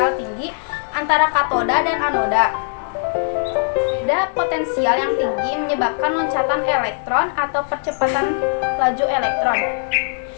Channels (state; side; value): silent; right; digital silence